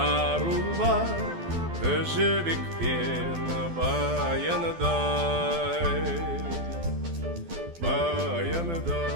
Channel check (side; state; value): left; late; 12 ms